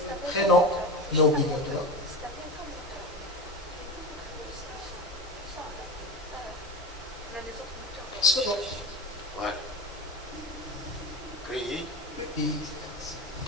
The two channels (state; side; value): normal; both; correlation 0.25